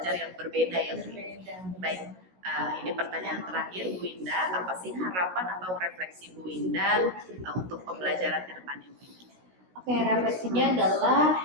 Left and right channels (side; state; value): left; late; 16 ms